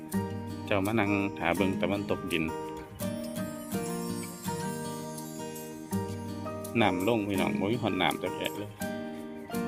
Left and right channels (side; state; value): both; identical; correlation 1.00